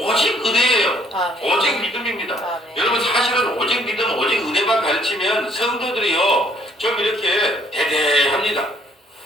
은혜예요. 아멘. 오직 믿음입니다. 아멘. 여러분 사실은 오직 믿음, 오직 은혜만 가르치면 성도들이요 좀 이렇게 대대합니다.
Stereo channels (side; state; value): both; normal; correlation 0.63